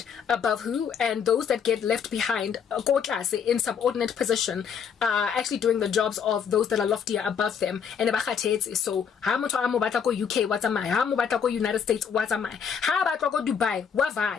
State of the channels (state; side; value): quieter; right; 7.2 dB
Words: above who, and those that get left behind in subordinate position actually doing the jobs of those that are loftier above them. And so how much UK, what's am I? How much United States, what's am I? How about Dubai?